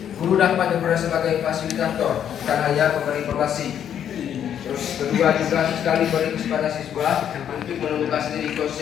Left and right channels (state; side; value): quieter; right; 9.4 dB